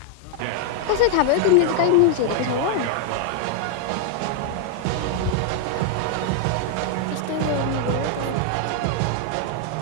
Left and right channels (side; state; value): both; different; correlation 0.00